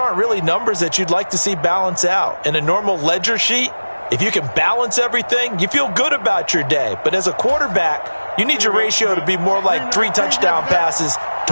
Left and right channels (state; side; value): inverted; both; correlation -1.00